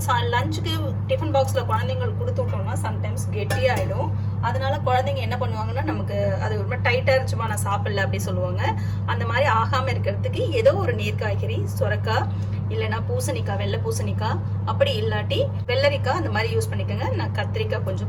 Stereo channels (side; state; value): both; identical; correlation 1.00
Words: லஞ்சுக்கு டிஃபன் பாக்ஸில் குழந்தைங்களுக்கு கொடுத்து விட்டோம்னா சம்டைம்ஸ் கெட்டியாகிடும். அதனால குழந்தைங்க என்ன பண்ணுவாங்கன்னா நமக்கு அது ரொம்ப டைட்டாக இருந்துச்சுமா நான் சாப்பிடல அப்படி சொல்லுவாங்க. அந்த மாதிரி ஆகாமல் இருக்கிறதுக்கு ஏதோ ஒரு நீர் காய்கறி, சுரக்காய் இல்லைன்னா பூசணிக்காய், வெள்ளை பூசணிக்காய், அப்படி இல்லாட்டி வெள்ளரிக்காய் அந்த மாதிரி யூஸ் பண்ணிக்கோங்க. நான் கத்திரிக்காய்